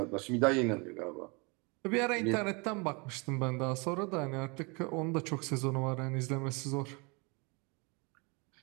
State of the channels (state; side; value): quieter; left; 30.0 dB